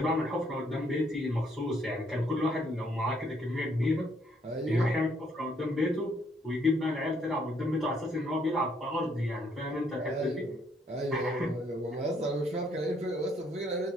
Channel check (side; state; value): both; normal; correlation 0.69